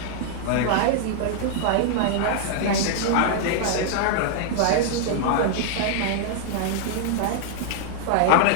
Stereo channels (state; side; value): different; both; correlation -0.01